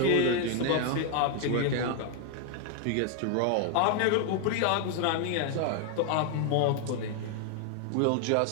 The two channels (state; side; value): different; both; correlation 0.00